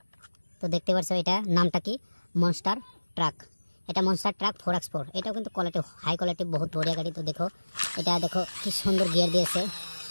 তো দেখতে পাচ্ছ, এটা নামটা কি, মনস্টার ট্রাক। এটা মনস্টার ট্রাক 4x4। এটাও কিন্তু কোয়ালিটি, হাই কোয়ালিটি, বহুত বড়িয়া গাড়ি। তো দেখো, এটা দেখো কি সুন্দর গিয়ার দিয়েছে,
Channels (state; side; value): inverted; both; correlation -1.00